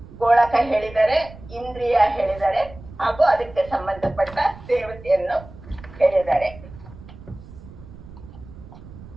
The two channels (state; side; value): noise; right; rumble, 17 dB below the sound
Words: ಗೋಳಕ ಹೇಳಿದರೆ, ಇಂದ್ರಿಯ ಹೇಳಿದರೆ, ಹಾಗೂ ಅದಕ್ಕೆ ಸಂಬಂಧಪಟ್ಟ ದೇವತೆಯನ್ನು ಹೇಳಿದ್ದಾರೆ.